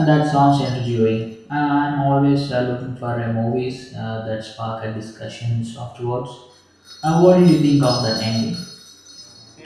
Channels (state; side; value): identical; both; correlation 1.00